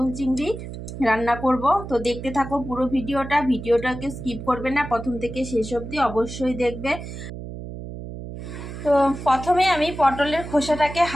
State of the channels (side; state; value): right; noise; hum, 10 dB below the sound